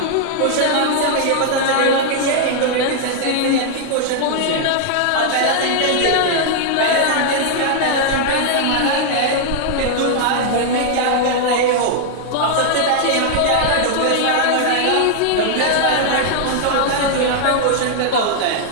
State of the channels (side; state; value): both; different; correlation -0.01